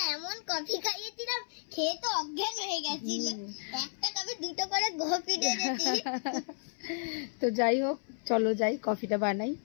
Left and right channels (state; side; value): silent; right; 56 dB below the other